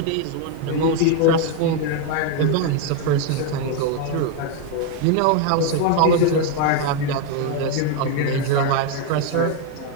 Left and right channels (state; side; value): different; both; correlation 0.01